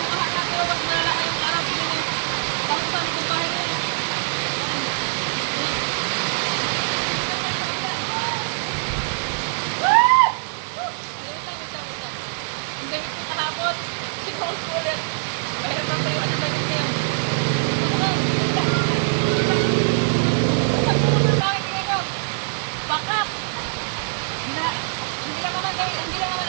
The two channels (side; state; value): left; silent; digital silence